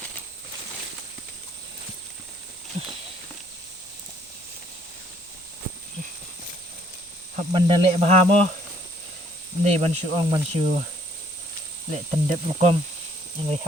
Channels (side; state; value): both; normal; correlation 0.63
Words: hấp banda lệ bà mo này ban sư lệ tần đẹp lukom yang